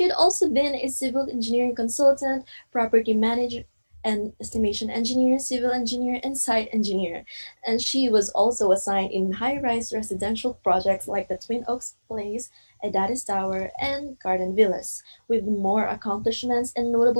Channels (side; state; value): both; inverted; correlation -1.00